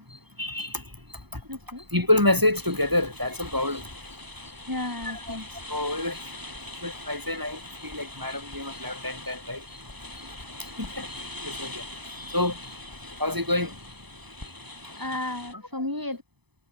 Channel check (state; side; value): late; left; 0.99 ms